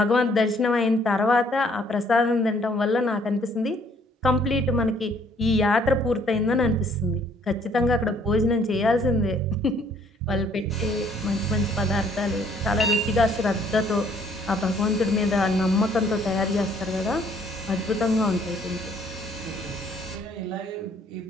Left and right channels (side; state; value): both; normal; correlation 0.63